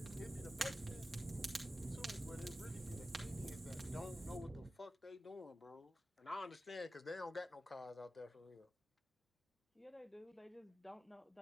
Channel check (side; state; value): both; normal; correlation 0.94